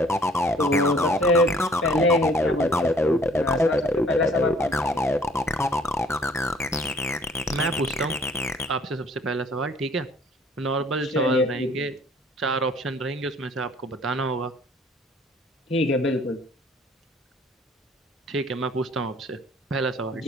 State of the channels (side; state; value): both; normal; correlation 0.57